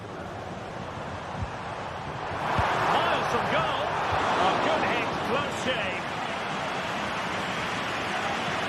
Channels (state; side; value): identical; both; correlation 1.00